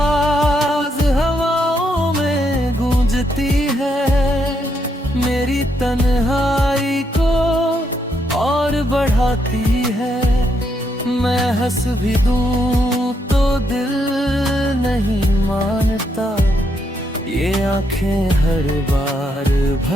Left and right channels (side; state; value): both; normal; correlation 0.77